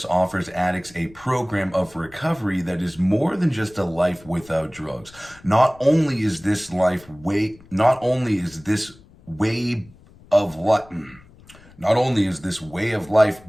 offers addicts a program of recovery that is more than just a life without drugs. Not only is this way of life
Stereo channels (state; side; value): noise; left; rumble, 24 dB below the sound